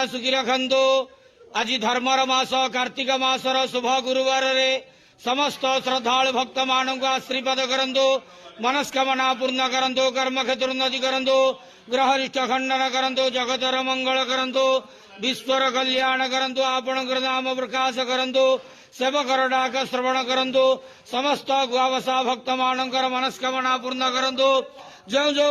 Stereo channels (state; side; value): identical; both; correlation 1.00